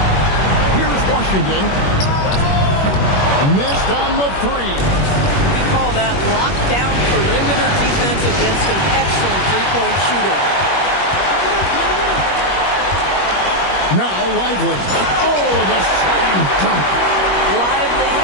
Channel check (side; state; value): right; late; 21 ms